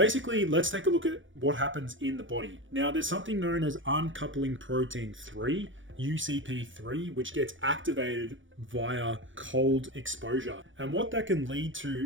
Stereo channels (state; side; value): late; left; 0.56 ms